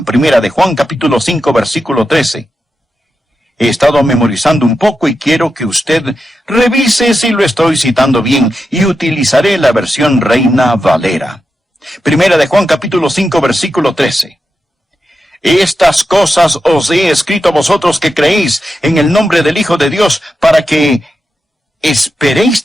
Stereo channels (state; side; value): normal; both; correlation 0.89